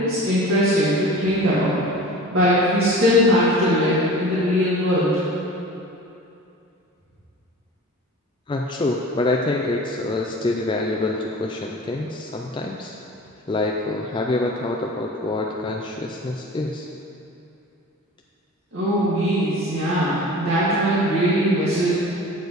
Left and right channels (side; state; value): both; normal; correlation 0.39